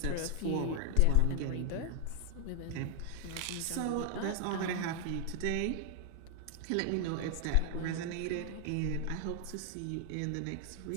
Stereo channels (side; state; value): both; different; correlation 0.00